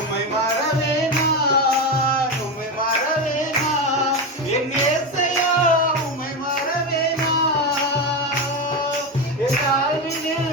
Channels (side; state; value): both; normal; correlation 0.15